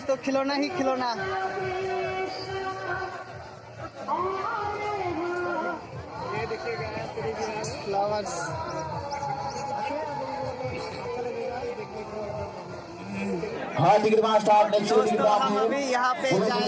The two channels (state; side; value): identical; both; correlation 1.00